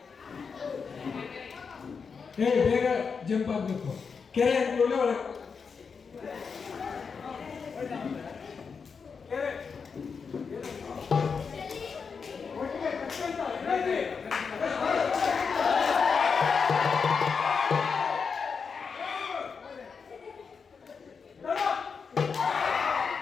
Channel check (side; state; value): right; quieter; 5.6 dB